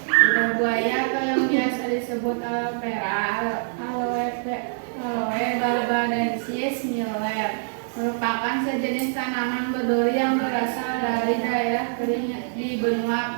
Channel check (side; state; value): left; silent; digital silence